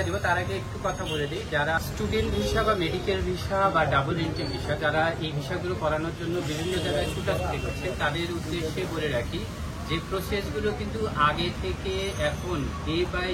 দিব। তার আগে একটু কথা বলে দিই, যারা স্টুডেন্ট ভিসা বা মেডিকেল ভিসা বা ডাবল এন্ট্রি ভিসা, যারা এই ভিসাগুলো করানোর জন্য বিভিন্ন জায়গায় ছুটাছুটি করছে, তাদের উদ্দেশ্যে বলে রাখি যে প্রসেসগুলো কিন্তু আগে থেকে এখন ডে বাই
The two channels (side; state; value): both; identical; correlation 1.00